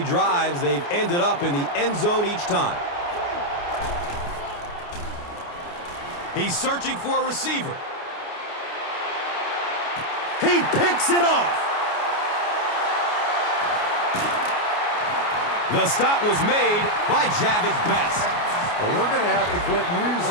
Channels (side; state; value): right; late; 29 ms